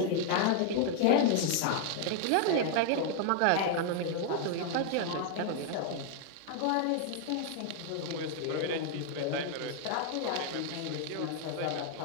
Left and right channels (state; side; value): different; both; correlation 0.00